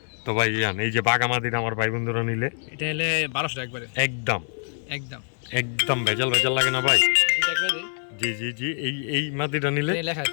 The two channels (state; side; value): silent; right; 62 dB below the other